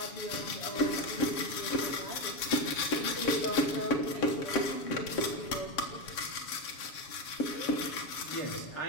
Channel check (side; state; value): right; late; 7.1 ms